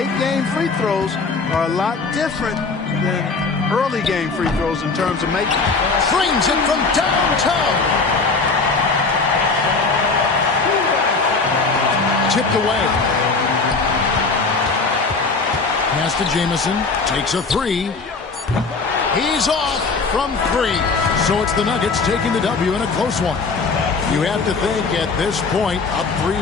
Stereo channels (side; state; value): right; quieter; 4.3 dB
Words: game free throws are a lot different than early game free throws in terms of making. Frames it from downtown. Tipped away. Pass to Jamison. Takes a three. He's off from three. So it's the Nuggets taking the W in a close one. You have to think at this point, up